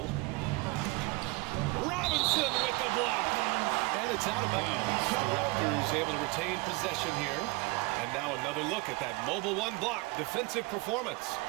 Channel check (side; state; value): left; quieter; 24.2 dB